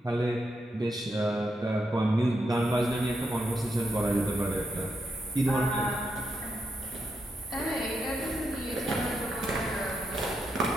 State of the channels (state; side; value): normal; both; correlation 0.83